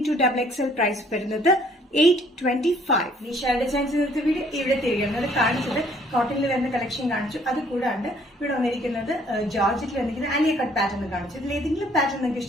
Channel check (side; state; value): both; normal; correlation 0.61